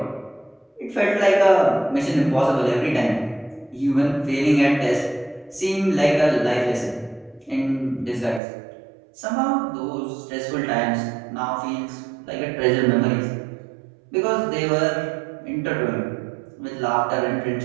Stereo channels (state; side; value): drops out; left; at 8.4 s